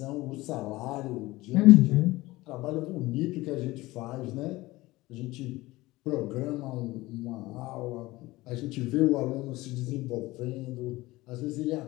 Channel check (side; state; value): right; quieter; 19.5 dB